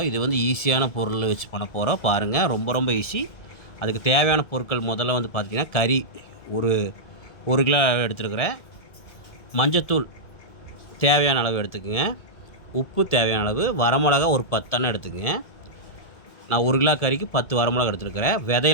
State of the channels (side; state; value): right; late; 1.7 ms